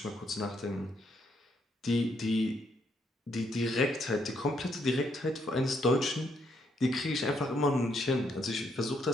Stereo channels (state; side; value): normal; both; correlation 0.74